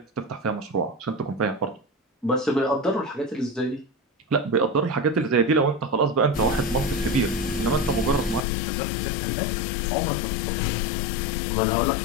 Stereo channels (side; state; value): right; drops out; at 8.5 s